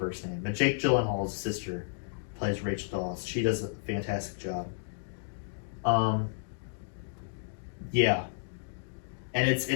name, but Jake Gyllenhaal's sister plays Rachel Dawes. She does a fantastic job. Yeah, and it's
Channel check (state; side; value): silent; right; digital silence